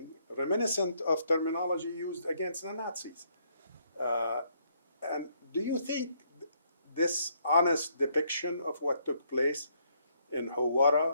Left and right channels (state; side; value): inverted; both; correlation -0.71